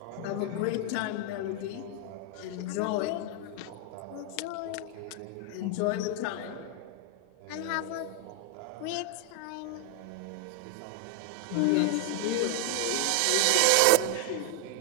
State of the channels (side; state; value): both; different; correlation 0.00